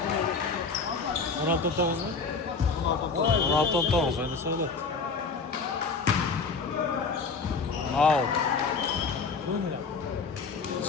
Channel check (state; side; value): quieter; right; 4.6 dB